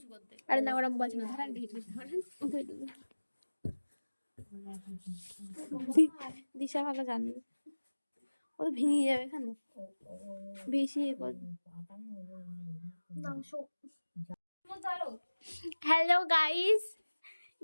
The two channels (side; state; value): both; inverted; correlation -1.00